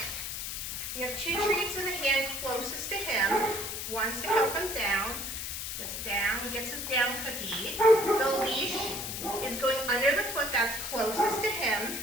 We have two treats in the hand closest to him. One's to help him down. Just down. He gets his down cookie. The leash is going under the foot that's closest to him.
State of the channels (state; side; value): noise; left; hiss, 5 dB below the sound